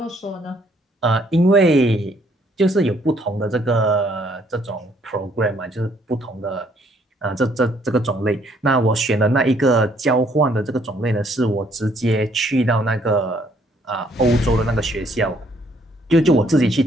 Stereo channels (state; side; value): normal; both; correlation 0.66